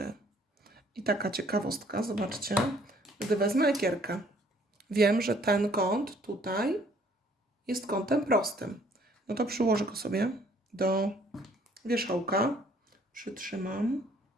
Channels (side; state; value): both; normal; correlation 0.61